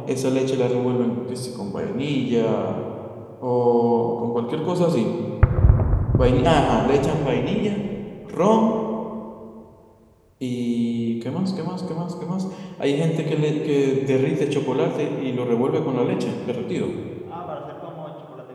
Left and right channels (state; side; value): identical; both; correlation 1.00